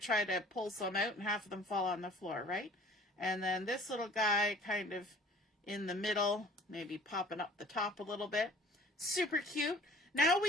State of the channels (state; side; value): normal; both; correlation 0.50